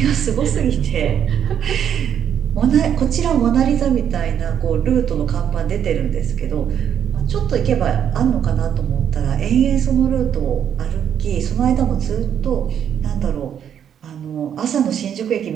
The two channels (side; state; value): left; quieter; 9.0 dB